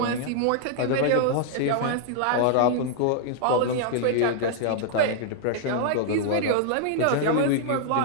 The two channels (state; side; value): different; both; correlation 0.00